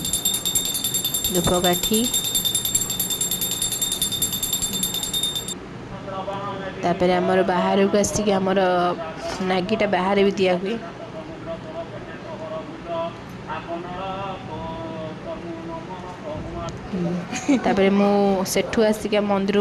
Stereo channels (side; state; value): both; identical; correlation 1.00